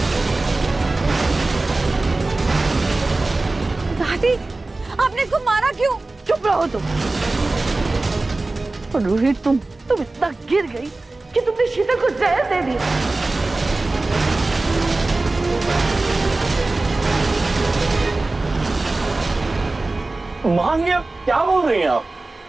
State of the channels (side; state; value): left; quieter; 3.2 dB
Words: दादी, आपने इसको मारा क्यों? चुप रहो तुम। और रोहित, तुम इतना गिर गई कि तुमने शीतल को जहर दे दिया। मां, ये क्या बोल रही हैं आप?